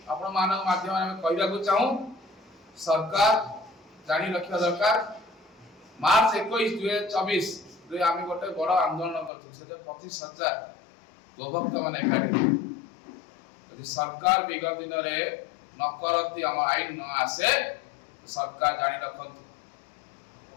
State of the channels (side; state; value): right; drops out; at 9.3 s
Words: आपण मानव माध्यम में कहबा को चाहू सरकार जानी रखिया दरकार मार्च 21 2024 रे आमे गोटे बड़ आंदोलन करथु से 25,000 गोभक्त माने एकाठी यदि सरकार विगत दिन रे न करती हम आईन न आसे तो सरकार जानी रखंतु